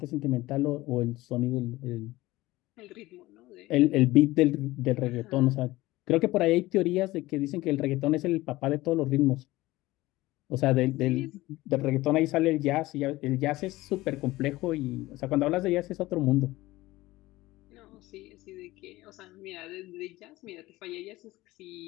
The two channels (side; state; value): right; quieter; 18.5 dB